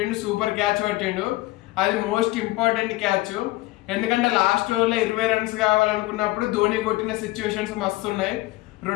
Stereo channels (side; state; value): right; quieter; 19.3 dB